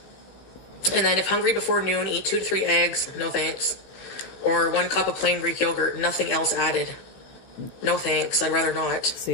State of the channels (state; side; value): late; right; 15 ms